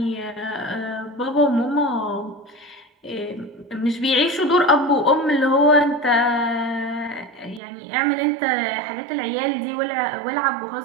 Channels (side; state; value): left; drops out; at 7.6 s